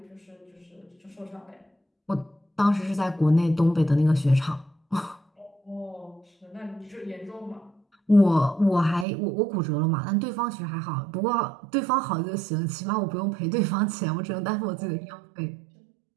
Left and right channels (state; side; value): drops out; left; at 9.1 s